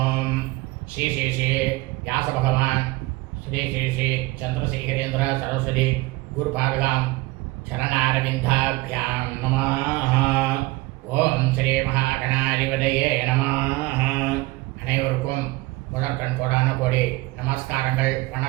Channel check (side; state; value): left; quieter; 20.8 dB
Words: श्री श्री श्री व्यास भगवान श्री श्री श्री चंद्रशेखरेंद्र सरस्वती गुरुपादगां चरणारविंदाभ्यां नमः। ओम श्री महागणाधिपतये नमः। அனைவருக்கும் முதற்கண் கோடான கோடி நமஸ்காரங்கள்,